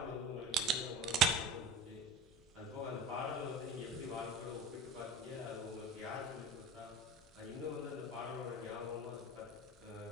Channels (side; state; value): both; normal; correlation 0.32